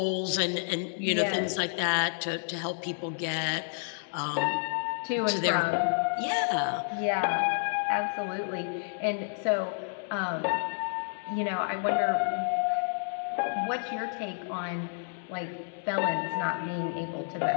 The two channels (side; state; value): right; silent; digital silence